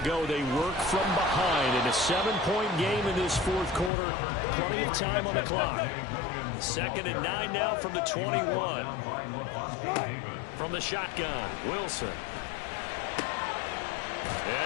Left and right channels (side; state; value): right; drops out; at 3.9 s